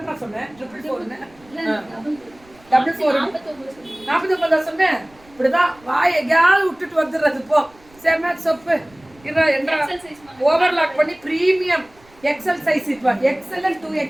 சொன்னேன். 444 சொன்னேன். இப்படிதான் வாய் எங்கேயாவது விட்டுட்டு வந்துடுறது. போ செம சொப்பு என்ன ஓவர்லாக் பண்ணி பிரீமியம் எக்ஸல் சைஸ். இப்போ எக்ஸல்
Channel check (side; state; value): right; noise; rumble, 28 dB below the sound